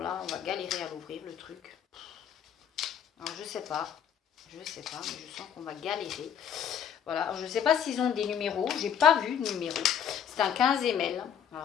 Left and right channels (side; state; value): right; quieter; 8.6 dB